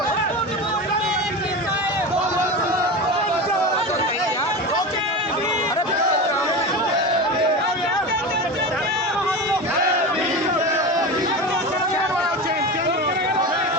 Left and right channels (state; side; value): normal; both; correlation 0.26